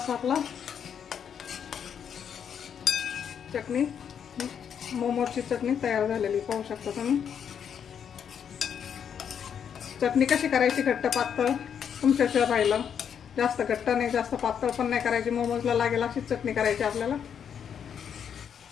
आपला चटणी मोमोजची चटणी तयार झालेली पाहू शकता तुम्ही. चटणी कशी करायची घट्ट पातळ तुमच्याशिवाय राहिलं. जास्त घट्ट नाही जास्त पातळ पण नाही करायची. मोमोजला लागेल अशीच चटणी करायची आपल्याला.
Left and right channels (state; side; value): quieter; right; 8.0 dB